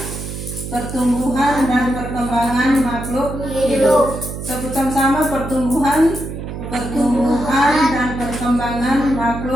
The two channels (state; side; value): noise; right; hum, 8 dB below the sound